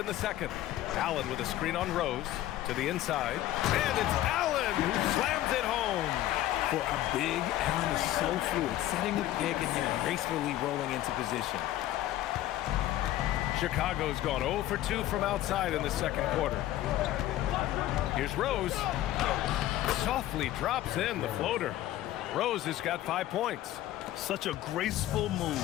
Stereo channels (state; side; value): quieter; right; 14.1 dB